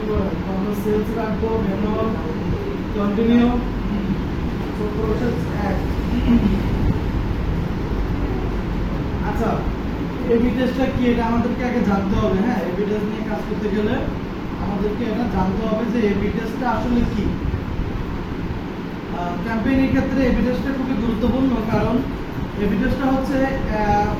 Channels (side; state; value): both; identical; correlation 1.00